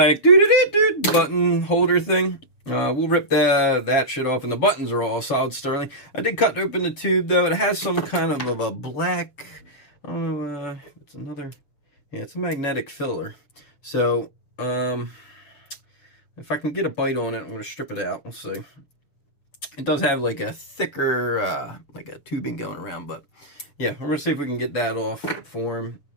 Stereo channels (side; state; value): right; late; 6.9 ms